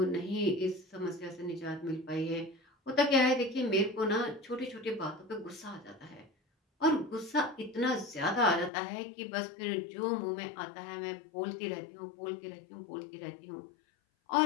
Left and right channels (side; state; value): right; drops out; at 8.7 s